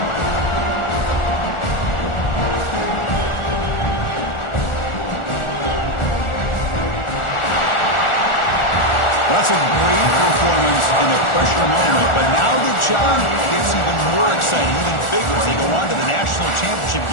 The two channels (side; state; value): right; late; 1.4 ms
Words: That's a great performance in the pressure moment, but now the job gets even more exciting, even bigger as they go on to the national championship